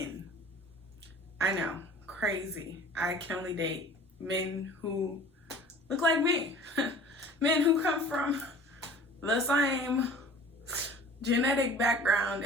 I know, crazy. I can only date men who look like me. Men who come from the same genetic background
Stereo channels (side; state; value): both; normal; correlation 0.44